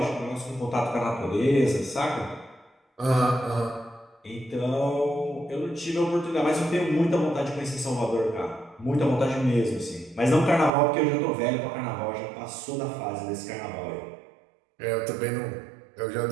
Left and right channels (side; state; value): left; drops out; at 10.7 s